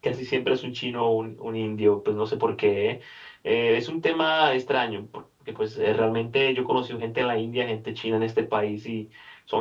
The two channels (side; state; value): both; identical; correlation 1.00